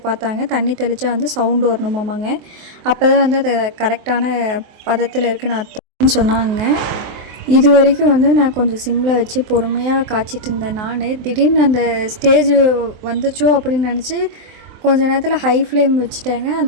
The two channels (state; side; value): late; left; 23 ms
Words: பார்த்தாங்க. தண்ணி தெளித்தா வந்து சவுண்டு வரணுமாமாங்க. அப்போ தான் வந்து அது கரெக்டான பதத்தில் இருக்குன்னு அர்த்தம்னு சொன்னாங்க. இது வரைக்கும் வந்து நான் கொஞ்சம் சிம்மில் வச்சு பொறுமையாக காய்ச்சிட்டு இருந்தேன். திடீர்னு அந்த ஸ்டேஜ் வந்துச்சோ அப்படின்னு நினச்சி கொஞ்ச நேரத்தில் ஹை ஃப்ளேம் வச்சுட்டேங்க.